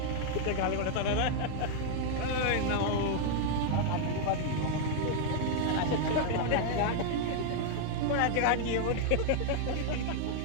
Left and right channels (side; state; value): both; different; correlation 0.00